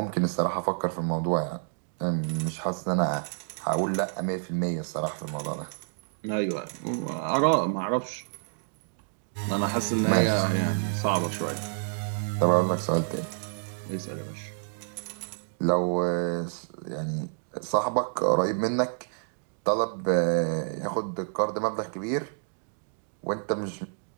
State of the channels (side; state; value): left; silent; digital silence